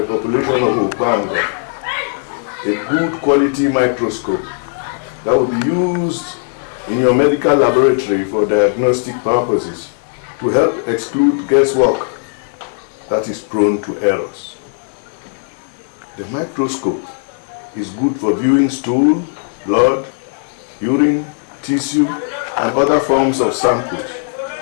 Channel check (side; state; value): right; silent; 68 dB below the other